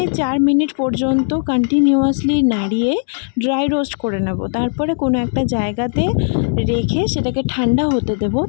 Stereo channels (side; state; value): right; silent; digital silence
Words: 4 মিনিট পর্যন্ত কন্টিনিউয়াসলি নাড়িয়ে ড্রাই রোস্ট করে নেব। তারপরে কোনো একটা জায়গাতে রেখে সেটাকে ঠান্ডা হতে দেব।